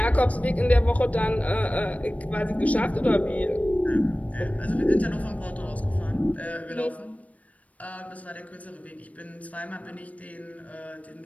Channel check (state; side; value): late; right; 0.068 ms